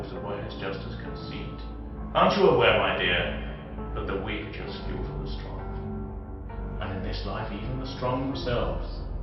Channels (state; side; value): identical; both; correlation 1.00